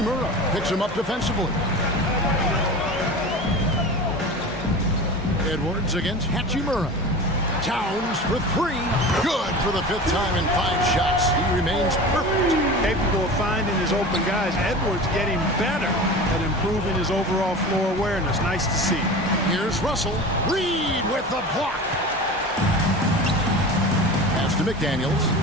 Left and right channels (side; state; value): both; normal; correlation 0.33